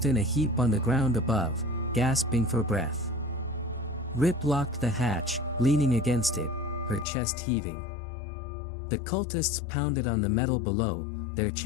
in a heap on the ground above, gasping for breath. Rip locked the hatch, leaning against it, her chest heaving. The cultists pounded on the metal below, their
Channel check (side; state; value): right; drops out; at 7.1 s